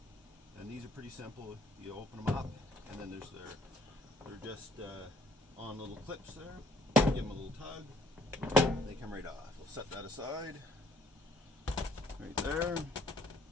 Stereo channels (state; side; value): normal; both; correlation 0.62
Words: And these are pretty simple. You open them up, and then they're just on little clips there. Give them a little tug. They come right off. We'll set that aside. Right there.